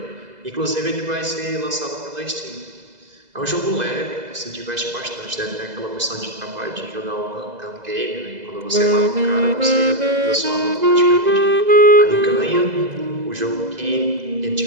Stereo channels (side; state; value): left; late; 2.0 ms